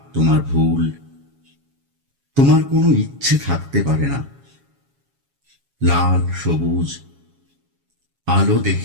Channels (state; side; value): late; left; 7.2 ms